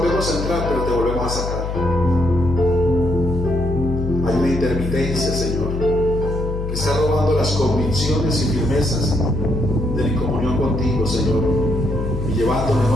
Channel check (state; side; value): noise; left; hum, 4 dB below the sound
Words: a entrar, pero te volvemos a sacar. Hay una intermitencia, Señor, que está robando las convicciones y firmezas de mi comunión contigo, Señor, y llevando